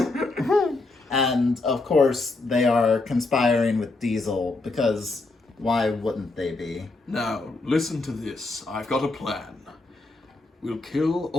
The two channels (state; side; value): quieter; right; 3.3 dB